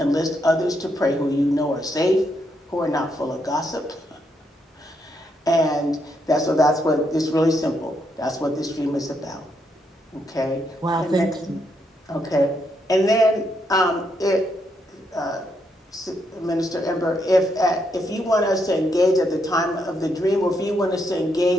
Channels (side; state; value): both; normal; correlation 0.78